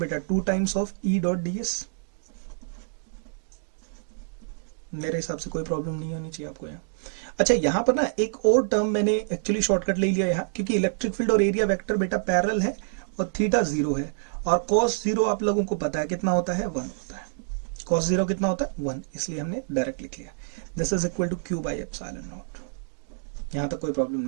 बेटा, 2 times of E dot ds। मेरे हिसाब से कोई प्रॉब्लम नहीं होनी चाहिए आपको यहाँ। अच्छा, यहां पर ना एक और टर्म मैंने एक्चुअली शॉर्टकट ले लिया यहाँ, क्योंकि इलेक्ट्रिक फील्ड और एरिया वेक्टर बेटा पैरेलल है और थीटा 0 है, और cos 0 आप लोगों को पता है कितना होता है, 1 होता है। cos 0 कितना होता है, 1, इसलिए हमने डायरेक्ट लिख लिया, this is equal to Q by epsilon naught. यहां तक कोई प्रॉब्लम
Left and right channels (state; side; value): silent; left; digital silence